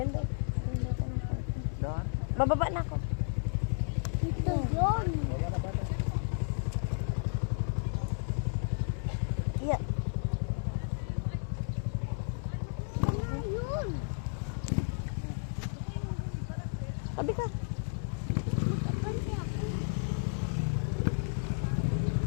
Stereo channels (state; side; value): silent; right; digital silence